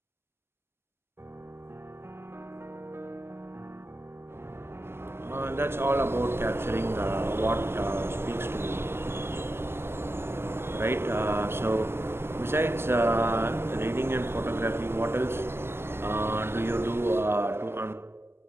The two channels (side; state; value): left; late; 0.12 ms